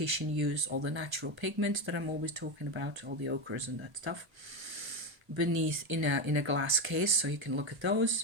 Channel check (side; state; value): left; late; 1.3 ms